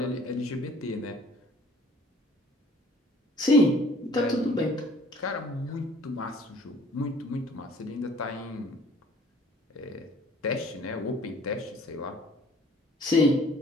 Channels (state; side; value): normal; both; correlation 0.54